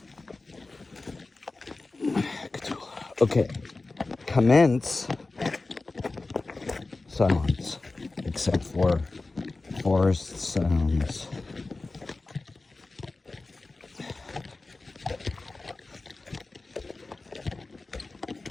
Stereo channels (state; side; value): quieter; right; 3.4 dB